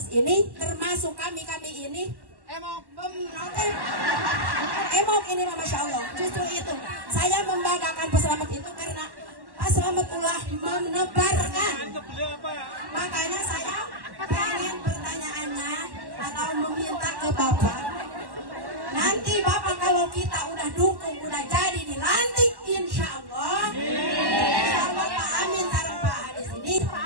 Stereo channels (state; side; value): late; left; 1.1 ms